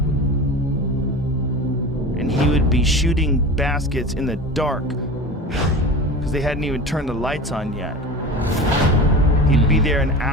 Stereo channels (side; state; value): both; normal; correlation 0.32